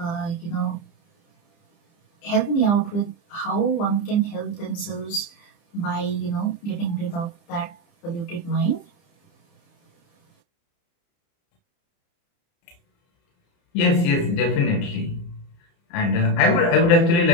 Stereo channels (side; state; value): right; late; 30 ms